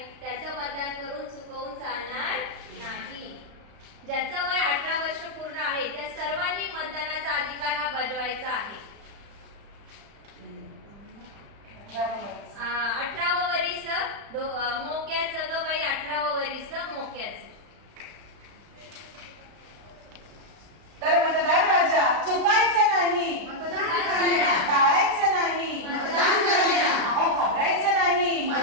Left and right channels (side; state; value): left; late; 35 ms